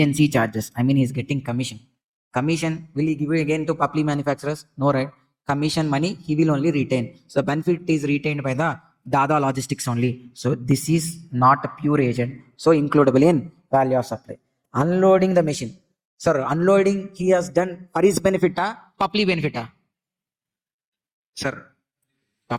charges. I mean, he is getting commission. Commission will he give again to Papli Manufacturers? No, right? Commission money he will only retain. So the benefit is retained by the Dada Logistics only. So this is not a pure agent. So includable in value of supply. Unloading the machine. Sir, unloading he has done for his benefit, Papli benefit. Sir,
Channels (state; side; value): identical; both; correlation 1.00